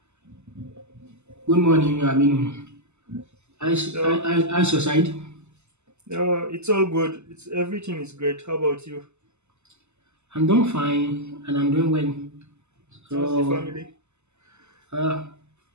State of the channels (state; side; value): late; left; 0.82 ms